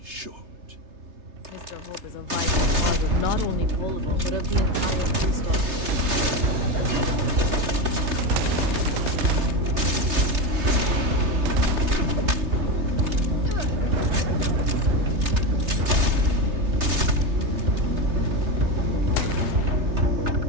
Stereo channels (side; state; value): left; late; 3.3 ms